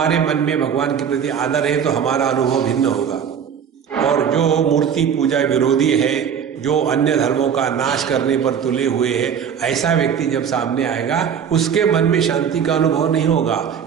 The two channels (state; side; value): quieter; left; 7.8 dB